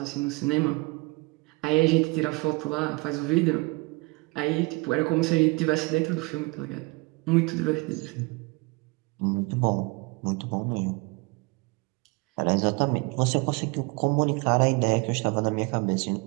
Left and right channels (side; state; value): left; quieter; 26.2 dB